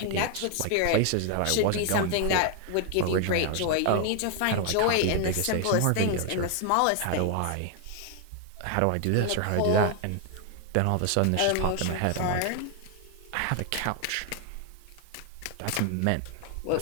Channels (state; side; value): different; both; correlation 0.01